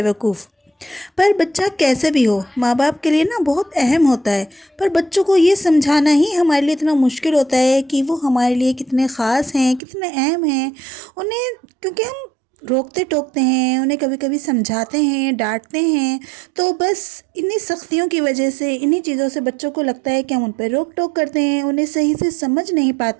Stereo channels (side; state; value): left; drops out; at 9.8 s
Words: पर बच्चा कैसे भी हो, माँ बाप के लिए ना बहुत अहम होता है। पर बच्चों को ये समझाना ही हमारे लिए इतना मुश्किल होता है कि वो हमारे लिए कितने ख़ास हैं, कितने अहम हैं उन्हें, क्योंकि हम रोकते टोकते हैं उन्हें, कभी कभी समझाते हैं, डांटते हैं। तो बस इन्हीं सख्तियों की वजह से, इन्हीं चीज़ों से बच्चों को लगता है कि हम उन पर रोक टोक करते हैं, उन्हें सही से समझ नहीं